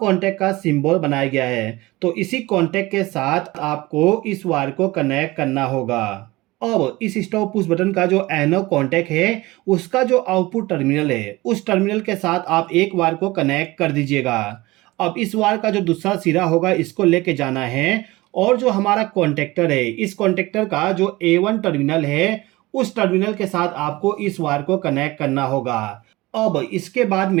का सिंबल बनाया गया है, तो इसी कॉन्टैक्ट के साथ आपको इस वायर को कनेक्ट करना होगा। अब इस स्टॉप पुश बटन का जो एनो कॉन्टैक्ट है उसका जो आउटपुट टर्मिनल है, उस टर्मिनल के साथ आप एक वायर को कनेक्ट कर दीजिएगा। अब इस वायर का जो दूसरा सिरा होगा इसको लेके जाना है और जो हमारा कॉन्टैक्टर है, इस कॉन्टैक्टर का जो A1 टर्मिनल है, उस टर्मिनल के साथ आपको इस वायर को कनेक्ट करना होगा। अब इसके बाद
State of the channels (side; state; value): left; quieter; 20.4 dB